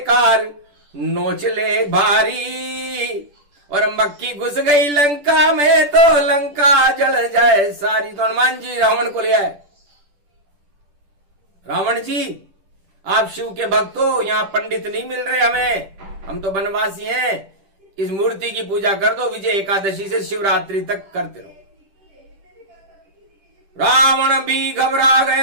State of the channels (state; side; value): late; left; 10 ms